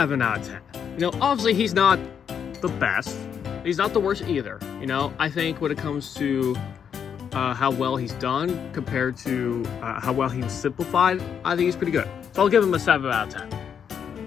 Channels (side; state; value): right; quieter; 7.7 dB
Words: out of 10. You know, obviously he's not the best. He's not the worst either. You know, I think when it comes to how well he's done compared to how well he was simplified, I think he's pretty good. So I'll give him a 7 out of 10.